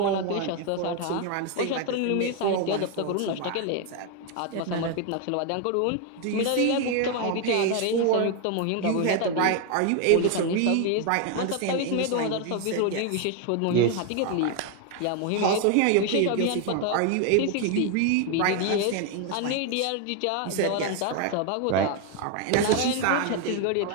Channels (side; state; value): both; different; correlation 0.01